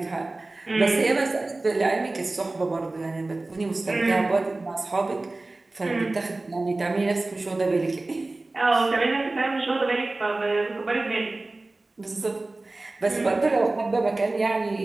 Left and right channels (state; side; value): quieter; left; 3.0 dB